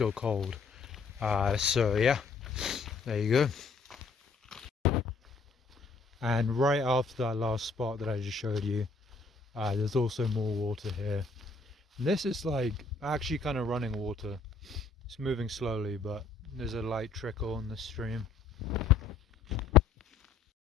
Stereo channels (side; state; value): right; quieter; 4.3 dB